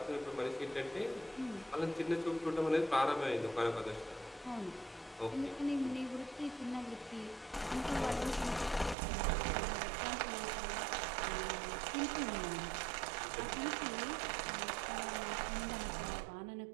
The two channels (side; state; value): left; drops out; at 9.0 s